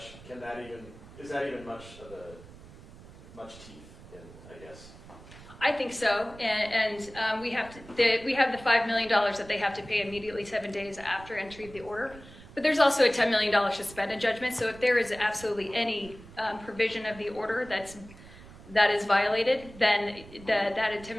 is that even much teeth in, I guess? I think so, and we have the $5 million that they have to pay immediately 7 days after entry of the order. But there's also a $10 million suspended judgment. So if there is absolutely any provision of the order that is violated, then that $10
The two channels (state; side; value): noise; right; rumble, 19 dB below the sound